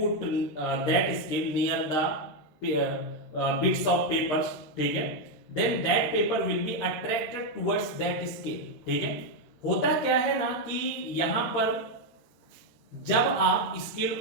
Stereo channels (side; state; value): right; late; 13 ms